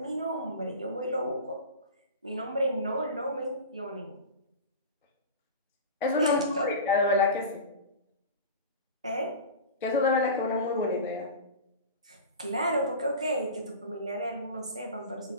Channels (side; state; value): both; inverted; correlation -0.31